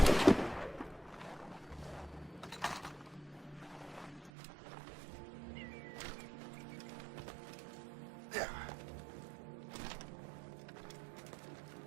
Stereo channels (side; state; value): left; drops out; at 4.3 s